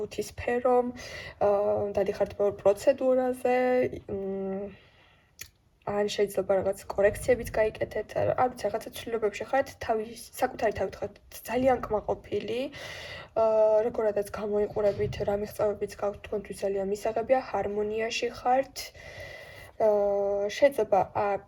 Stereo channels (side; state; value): both; identical; correlation 1.00